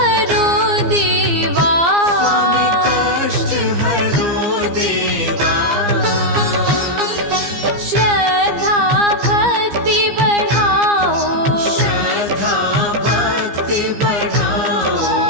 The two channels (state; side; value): late; left; 15 ms